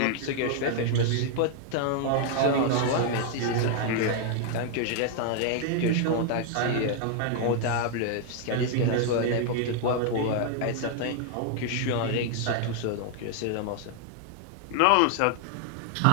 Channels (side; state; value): both; different; correlation 0.00